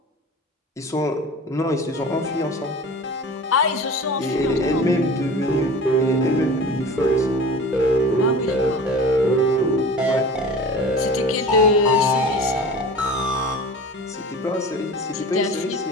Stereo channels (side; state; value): both; normal; correlation 0.38